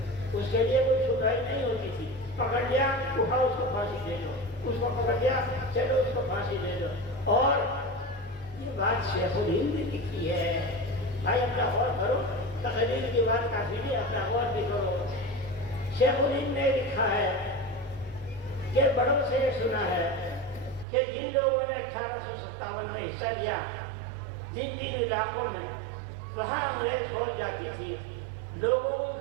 اس کے لیے کوئی سنوائی نہیں ہوتی تھی، پکڑ لیا اٹھاؤ اس کو پھانسی دے دو، اس کو پکڑ لیا چلو اس کو پھانسی دے دو۔ اور یہ بات شیخ الہند نے لکھی ہے، بھائی اپنا غور کرو، تقریر کی بات کافی نہیں، اپنا غور بھی کرو۔ شیخ الہند نے لکھا ہے کہ بڑوں سے یہ سنا ہے کہ جن لوگوں نے 1857 میں حصہ لیا جن علاقوں میں، وہاں انگریز فوج جاتی تھی، لوگوں کو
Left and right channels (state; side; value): drops out; left; at 20.9 s